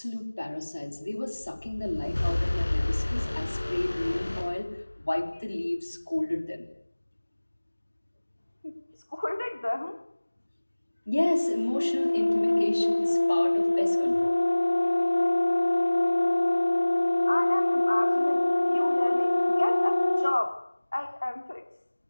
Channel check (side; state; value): both; inverted; correlation -1.00